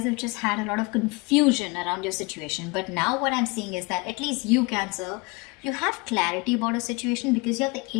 have just had a lot of confusion around your situation. But now what I'm seeing is that at least you, Cancer, you have clarity about a situation, because you have the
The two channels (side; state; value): right; quieter; 26.9 dB